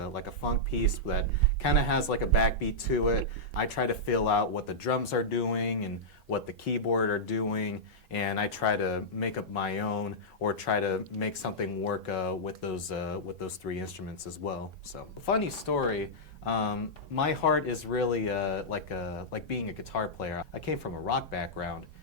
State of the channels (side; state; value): both; normal; correlation -0.10